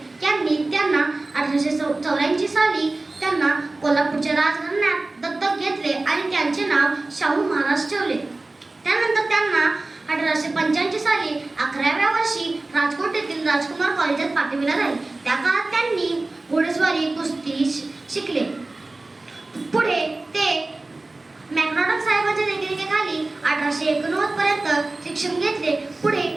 यांनी त्यांना 1884 साली त्यांना कोल्हापूरच्या राजघराण्यात दत्तक घेतले आणि त्यांचे नाव शाहू महाराज ठेवले. त्यानंतर त्यांना 1885 साली 11व्या वर्षी राजकोट येथील राजकुमार कॉलेजात पाठविले झाले. त्या काळात त्यांनी घोडेस्वारी कुस्ती शिकले. पुढे ते मॅकडॉनल्ड साहेबांच्या देखरेखीखाली 1889 पर्यंत शिक्षण घेतले. पुढे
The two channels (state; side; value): quieter; left; 3.1 dB